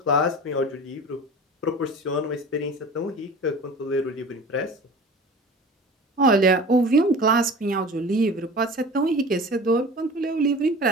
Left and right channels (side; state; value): both; normal; correlation 0.39